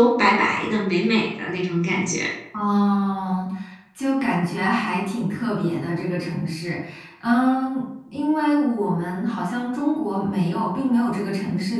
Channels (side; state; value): both; identical; correlation 1.00